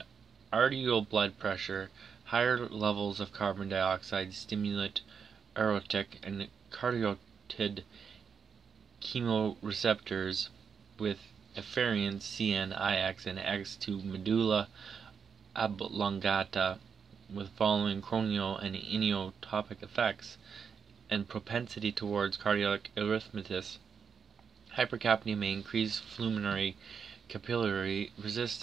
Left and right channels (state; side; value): quieter; left; 6.5 dB